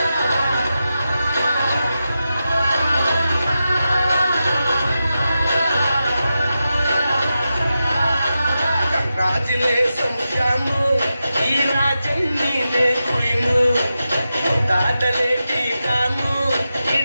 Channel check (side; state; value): both; inverted; correlation -0.90